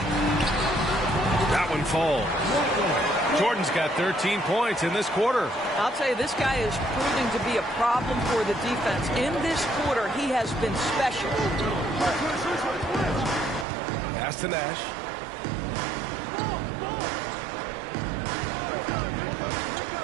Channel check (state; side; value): drops out; left; at 13.7 s